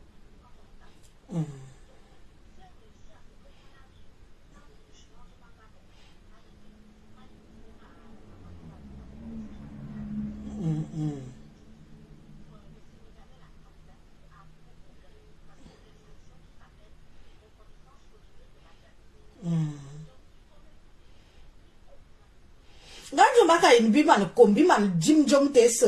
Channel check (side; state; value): both; identical; correlation 1.00